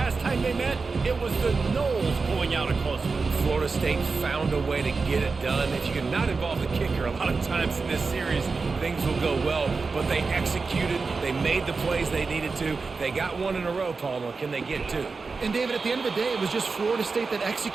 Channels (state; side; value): quieter; left; 4.4 dB